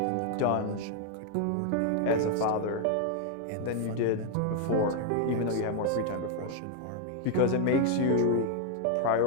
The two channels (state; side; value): different; both; correlation 0.00